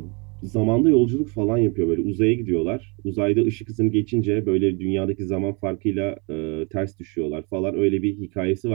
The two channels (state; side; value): quieter; left; 32.1 dB